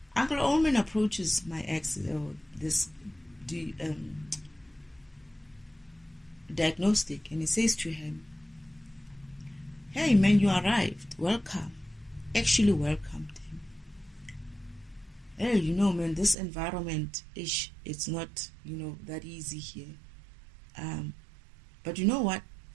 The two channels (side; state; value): left; drops out; at 16.4 s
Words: Uncle Omen approaches my ex, this diagnostic, and he says to him, hey man, you arrived, welcome. Actually welcomed him. Hey, man, this environment it's not, that easy here. But you know what?